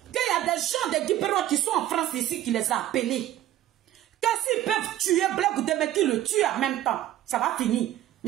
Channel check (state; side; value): quieter; left; 13.0 dB